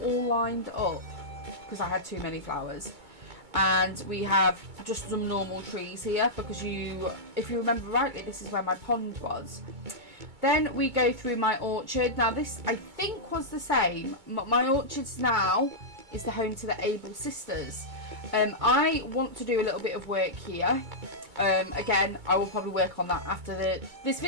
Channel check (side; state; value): left; late; 2.2 ms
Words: lined up because I had too many flowers. And we have just some normal trees here because if you remember rightly, this is where my pond was. Then we go through my orchard. Now this, I think, was the same. My orchards now is the home to the Able sisters. I want to do a little bit of work here. Again, I will probably work on that after this